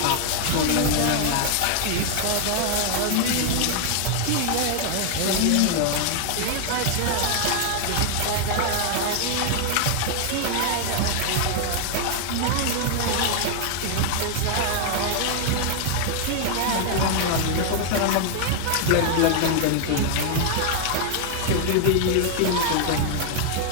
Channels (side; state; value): both; different; correlation 0.00